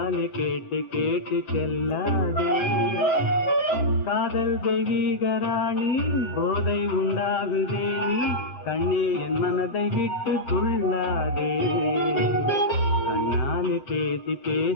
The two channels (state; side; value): late; right; 7.8 ms